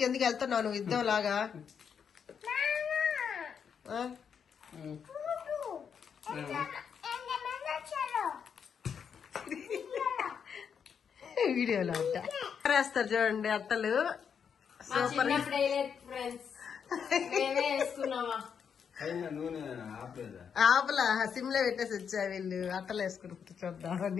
ఎందుకు వెళ్తున్నావు నువ్వు యుద్ధం లాగా? వీడియోలో అంట వేస్తారు చూడండి అట్టలు. సూపర్. ఆపలా సిమ్లో పెట్టేసి వచ్చా వీళ్ళు అట్టలు వేసుకుని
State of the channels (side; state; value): right; quieter; 7.1 dB